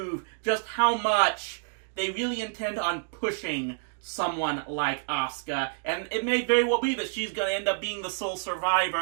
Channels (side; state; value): left; silent; digital silence